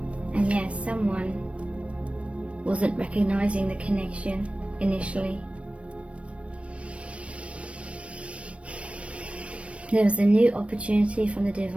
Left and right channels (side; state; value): left; late; 0.062 ms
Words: And yes, someone wasn't recognizing the connection initially. There was a new opportunity from the